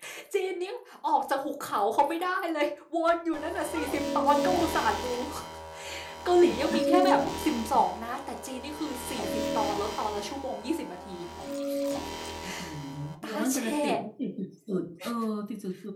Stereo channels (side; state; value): both; identical; correlation 1.00